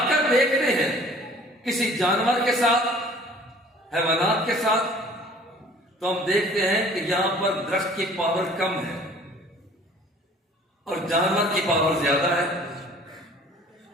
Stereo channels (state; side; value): normal; both; correlation 0.50